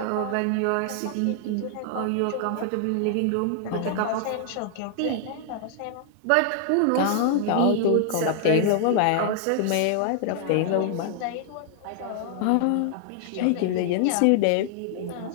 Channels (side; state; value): both; different; correlation 0.00